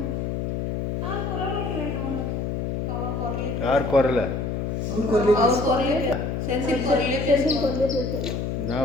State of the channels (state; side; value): noise; left; hum, 2 dB below the sound